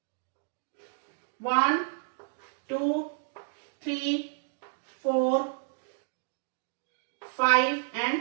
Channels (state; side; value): silent; left; digital silence